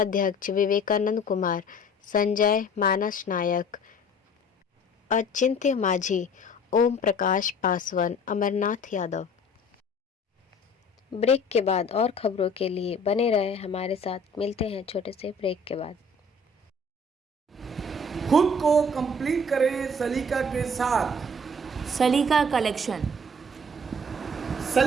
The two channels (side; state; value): both; normal; correlation 0.50